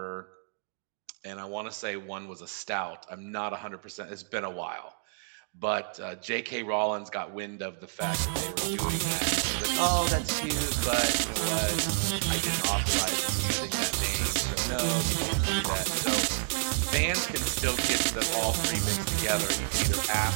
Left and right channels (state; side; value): silent; left; digital silence